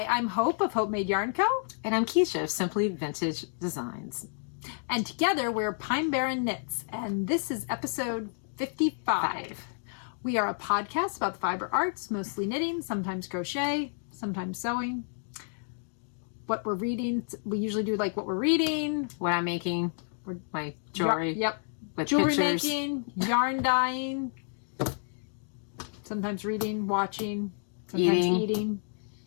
I'm Hope of Hopemade Yarn Co. And I'm Kiesha of Simply Vintage Designs. And together we're Pine Barren Knits, and this is episode 55. We are a podcast about the fiber arts, mostly knitting, sometimes crochet, sometimes sewing. What we're reading, we usually do like what we're reading. What I'm making, my jewelry. Yep. With Jewelry pictures. making, yarn dyeing, sometimes reading, watching, sometimes eating.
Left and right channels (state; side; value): silent; right; digital silence